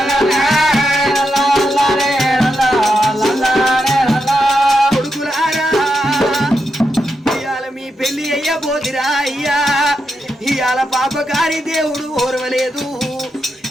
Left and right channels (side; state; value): both; normal; correlation 0.85